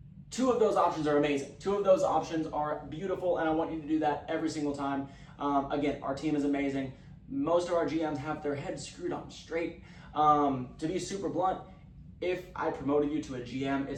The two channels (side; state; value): both; identical; correlation 1.00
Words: 2 of those options are amazing. 2 of those options are beautiful, and I want you to do that every single time. Again, our team is amazing. Most of our GMs have their heads screwed on straight. To be super blunt, if I promoted you to a GM,